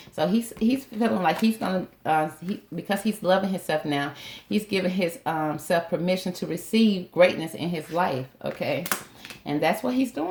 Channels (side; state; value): both; identical; correlation 1.00